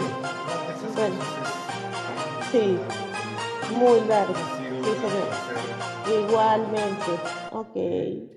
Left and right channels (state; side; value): identical; both; correlation 1.00